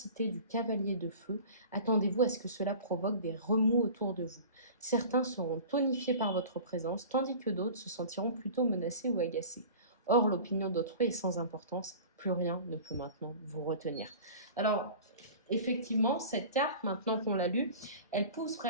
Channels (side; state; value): both; inverted; correlation -0.39